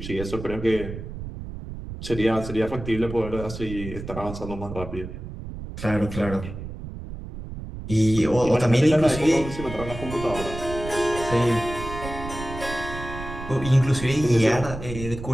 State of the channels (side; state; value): right; noise; rumble, 10 dB below the sound